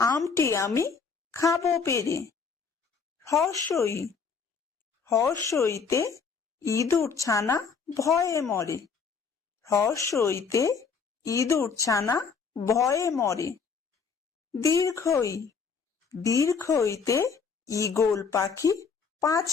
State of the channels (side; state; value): right; quieter; 5.6 dB